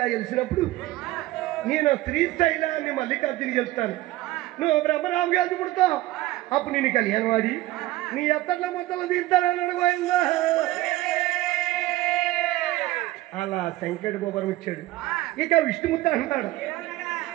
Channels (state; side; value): quieter; left; 17.2 dB